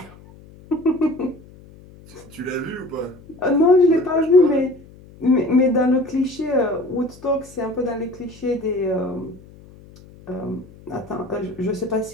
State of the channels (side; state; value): left; noise; hum, 22 dB below the sound